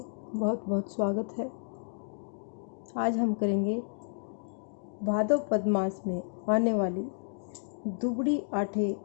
बहुत बहुत स्वागत है। आज हम करेंगे भादव पद मास में आने वाली दुबड़ी आठे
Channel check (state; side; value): silent; right; digital silence